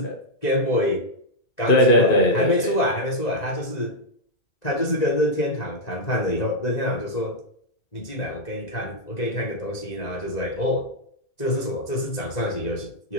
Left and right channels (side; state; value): right; late; 2.0 ms